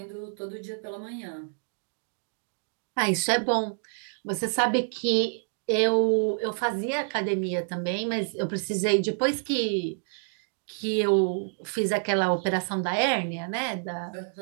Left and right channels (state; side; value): silent; left; digital silence